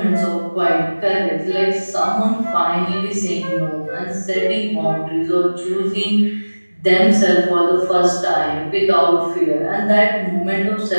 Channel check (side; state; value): both; inverted; correlation -1.00